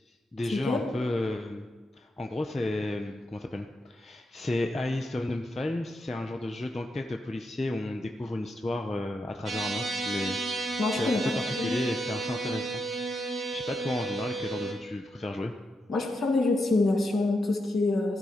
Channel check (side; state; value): both; normal; correlation 0.84